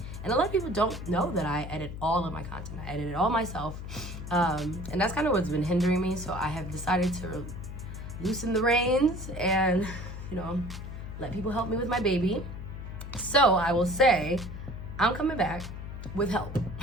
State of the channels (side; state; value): left; noise; hum, 9 dB below the sound